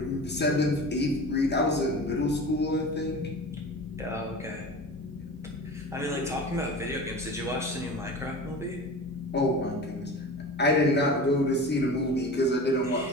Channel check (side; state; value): both; normal; correlation 0.34